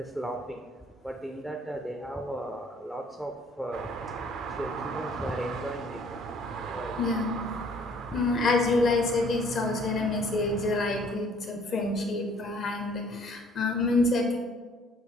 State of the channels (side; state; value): both; normal; correlation 0.59